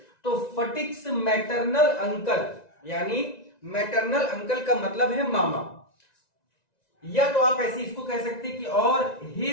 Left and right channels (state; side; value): late; right; 1.9 ms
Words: तो फटिक्स मैटरनल अंकल यानी मैटरनल अंकल का मतलब है मामा, या तो आप ऐसे इसको कह सकते हैं कि और